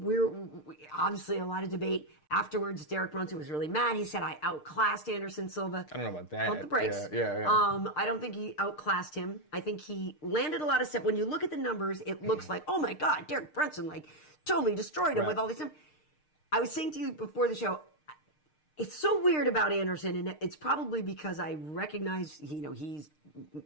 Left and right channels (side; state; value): right; late; 6.6 ms